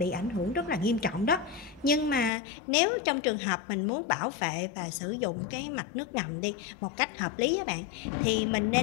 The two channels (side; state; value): right; drops out; at 2.3 s